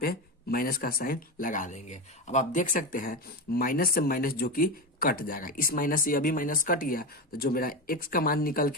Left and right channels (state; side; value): normal; both; correlation 0.18